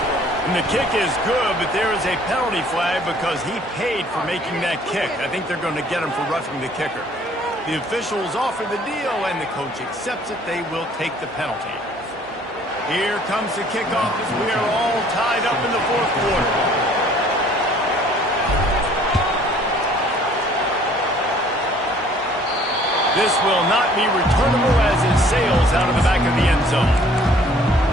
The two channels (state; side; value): normal; both; correlation 0.56